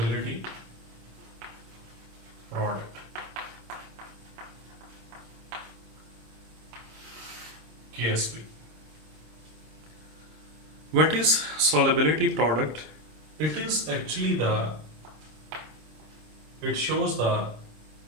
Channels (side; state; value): left; late; 26 ms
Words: product, KSP. What is solubility product? It is actually it shows the